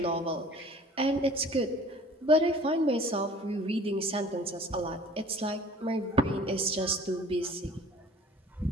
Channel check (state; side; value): normal; both; correlation 0.49